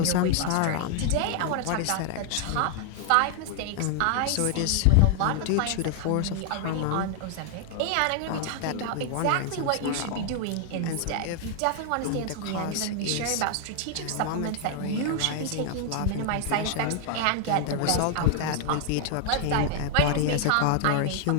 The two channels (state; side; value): different; both; correlation 0.00